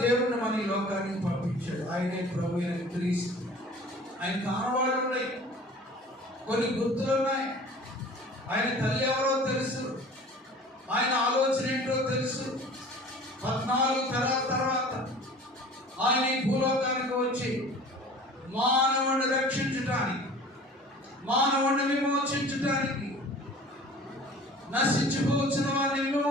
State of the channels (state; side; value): normal; both; correlation 0.45